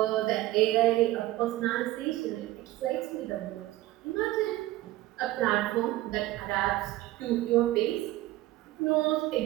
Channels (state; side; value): quieter; left; 16.7 dB